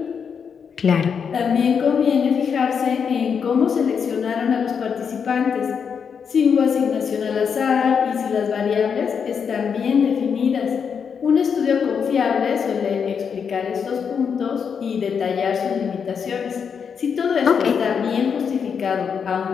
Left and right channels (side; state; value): right; quieter; 6.7 dB